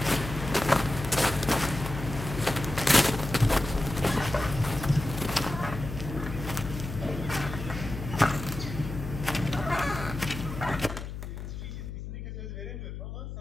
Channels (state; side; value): noise; left; hum, 8 dB below the sound